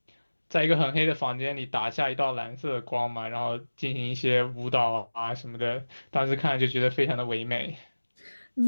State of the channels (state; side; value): inverted; both; correlation -1.00